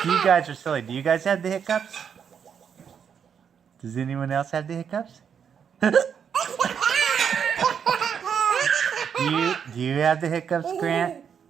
You guys are silly. Do you guys have the hiccups? Does anyone else have the hiccups? Do you have the hiccups, Grant?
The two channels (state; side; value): quieter; left; 7.5 dB